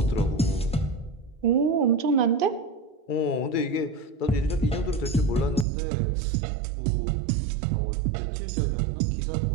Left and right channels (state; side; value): drops out; left; at 5.7 s